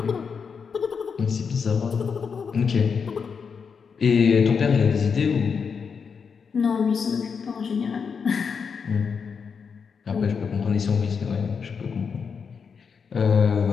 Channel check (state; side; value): quieter; right; 6.0 dB